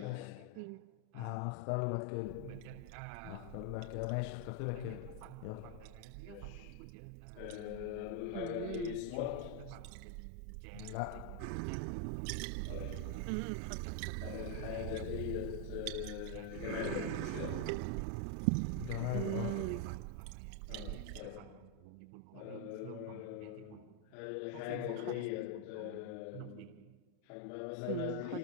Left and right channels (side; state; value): both; different; correlation 0.01